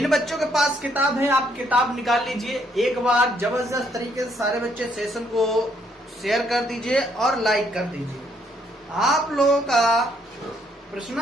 बच्चों के पास किताब है, आप किताब निकाल लीजिए। एक बार जबरदस्त तरीके से सारे बच्चे सेशन को शेयर कर दीजिए और लाइक कर दीजिए। आप लोगों का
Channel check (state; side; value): normal; both; correlation 0.70